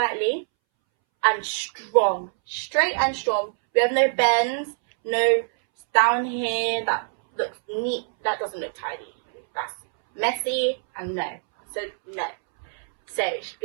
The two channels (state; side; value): silent; left; 62 dB below the other